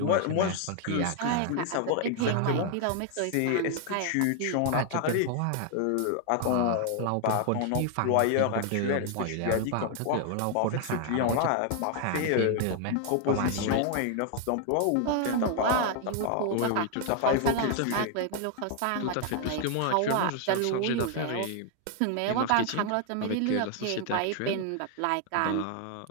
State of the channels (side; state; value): both; different; correlation 0.00